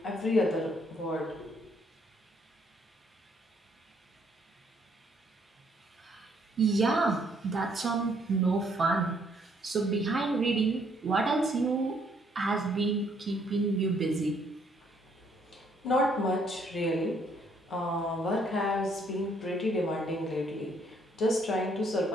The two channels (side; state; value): both; normal; correlation 0.67